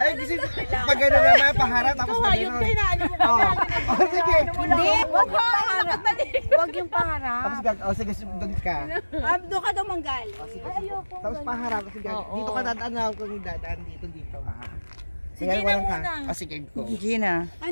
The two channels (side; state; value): both; inverted; correlation -1.00